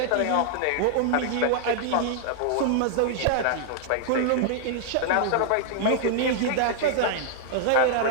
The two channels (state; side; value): different; both; correlation -0.01